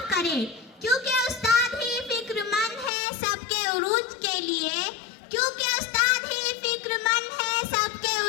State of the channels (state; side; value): drops out; right; at 2.9 s